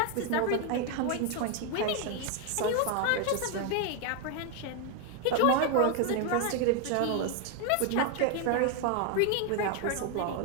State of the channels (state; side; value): different; both; correlation 0.01